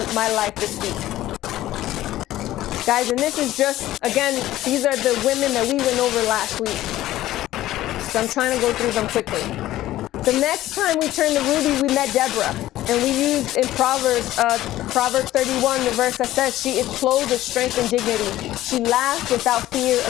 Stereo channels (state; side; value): quieter; right; 14.8 dB